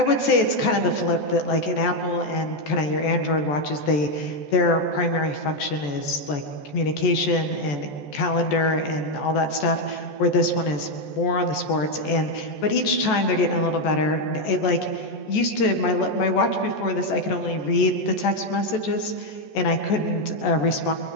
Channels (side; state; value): right; late; 14 ms